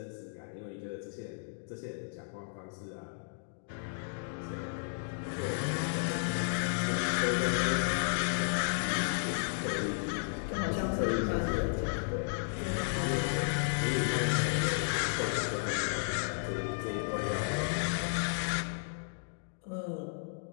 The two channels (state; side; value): silent; right; digital silence